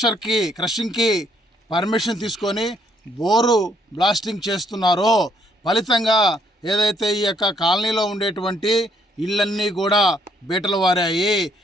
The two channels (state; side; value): normal; both; correlation 0.68